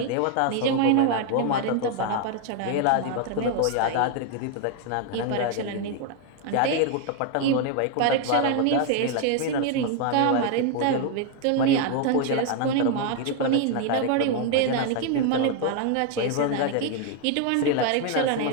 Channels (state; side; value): different; both; correlation 0.00